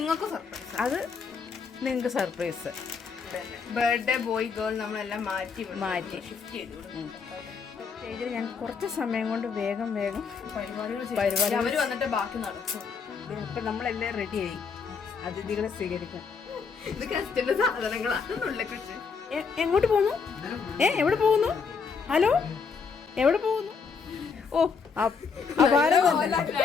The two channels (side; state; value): right; quieter; 5.5 dB